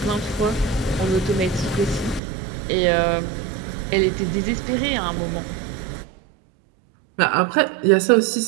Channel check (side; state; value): left; drops out; at 2.2 s